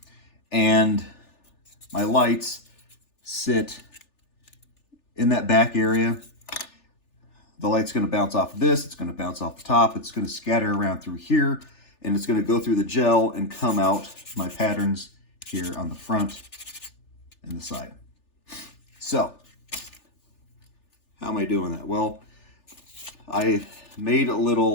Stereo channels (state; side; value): late; right; 3.4 ms